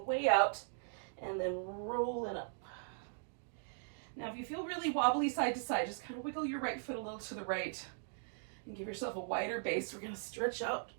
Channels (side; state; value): left; silent; digital silence